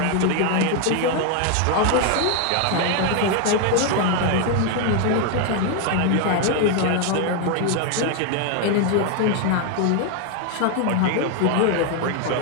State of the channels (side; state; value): both; different; correlation 0.01